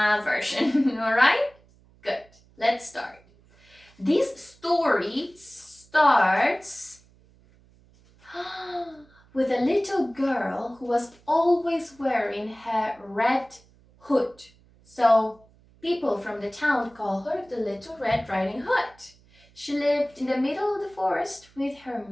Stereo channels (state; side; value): noise; right; hum, 29 dB below the sound